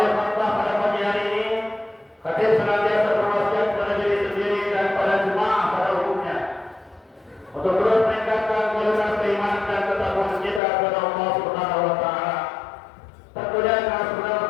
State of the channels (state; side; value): drops out; right; at 10.6 s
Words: khutbah pada pagi hari ini, khatib senantiasa berwasiat pada diri sendiri dan pada jemaah pada umumnya untuk terus meningkatkan kualitas keimanan dan ketakwaan kita kepada Allah Subhanahu wa taala. Tentunya dengan